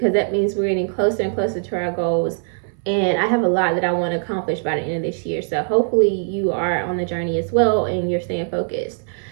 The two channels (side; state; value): left; silent; 63 dB below the other